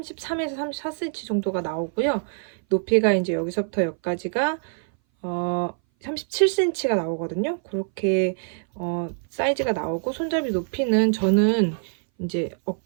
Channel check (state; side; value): silent; left; 59 dB below the other